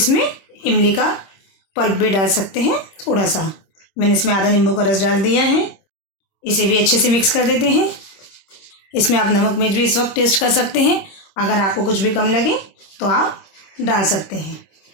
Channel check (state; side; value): late; right; 26 ms